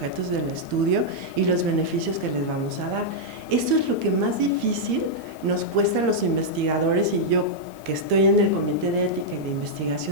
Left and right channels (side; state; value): left; noise; hiss, 26 dB below the sound